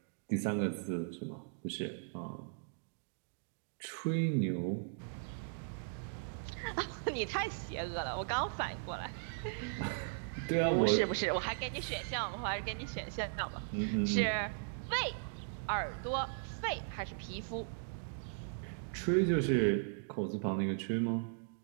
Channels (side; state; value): left; silent; digital silence